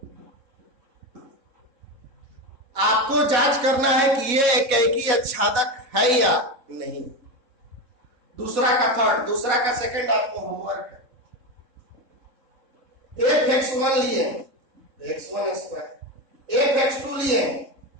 आपको जांच करना है कि ये एकैकी आच्छादक है या नहीं। दूसरा का थर्ड, दूसरा का सेकंड आपको होमवर्क है। f(x1) लिए x1 स्क्वायर, f(x2) लिए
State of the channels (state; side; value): late; left; 3.7 ms